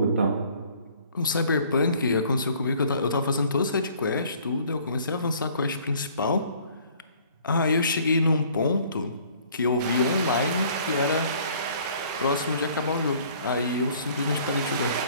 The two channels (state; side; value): inverted; both; correlation -0.56